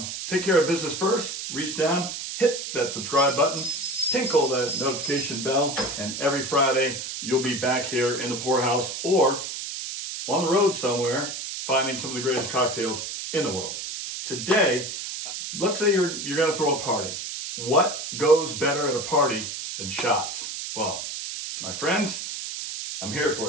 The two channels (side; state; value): right; noise; hiss, 6 dB below the sound